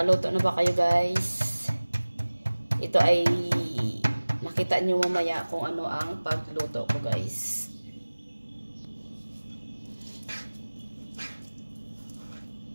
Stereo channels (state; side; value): inverted; both; correlation -1.00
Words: na ba kayo guys? Ito ay makita nyo mamaya kung ano ang pagluto ko guys.